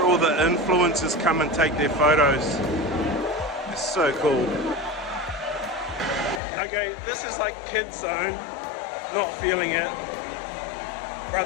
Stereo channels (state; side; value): drops out; right; at 6.4 s